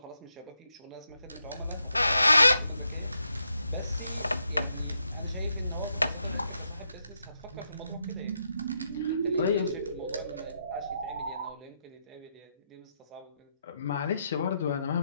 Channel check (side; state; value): both; inverted; correlation -0.81